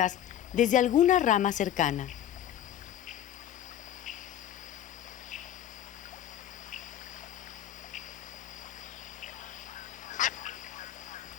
desde alguna rama cercana.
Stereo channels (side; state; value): right; quieter; 11.0 dB